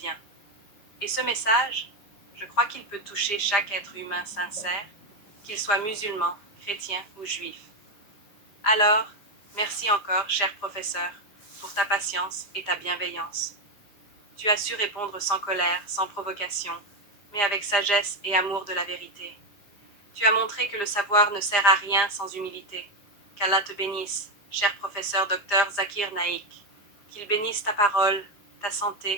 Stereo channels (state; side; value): late; right; 5.0 ms